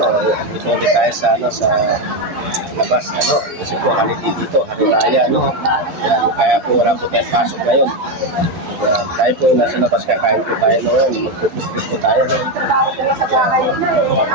ulit tayo sa labas, kasi po holiday dito, hari raya, yan, kaya po wala po tayong pasok ngayon. Yan, tayo po nasa labas, kakain po tayo ngayon, magpupipit po tayo, yan,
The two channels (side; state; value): left; late; 12 ms